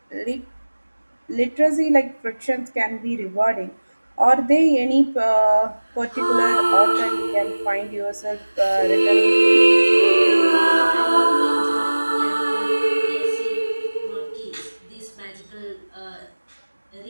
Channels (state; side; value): inverted; both; correlation -1.00